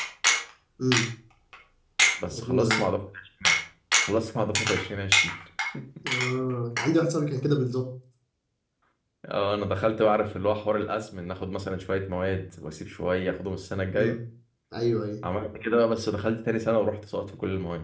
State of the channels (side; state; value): both; identical; correlation 1.00